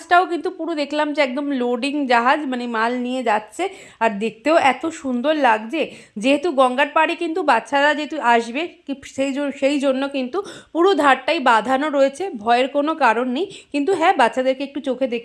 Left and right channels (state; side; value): identical; both; correlation 1.00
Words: কিন্তু পুরো দেখলাম যে একদম লোডিং জাহাজ, মাল নিয়ে যাচ্ছে। আর দেখতেও এত সুন্দর লাগছে। যেহেতু গঙ্গার পাড়ে কিন্তু বাচ্চারা যেহেতু আসবে, সেই জন্য কিন্তু পুরো ধারটাই বাঁধানো রয়েছে, ভয়ের কোনো কারণ নেই। কিন্তু হ্যাঁ, বাচ্চাদেরকে একটু চোখে